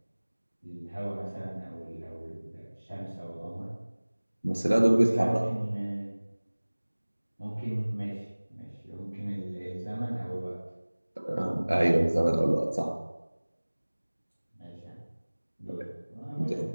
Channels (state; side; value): inverted; both; correlation -1.00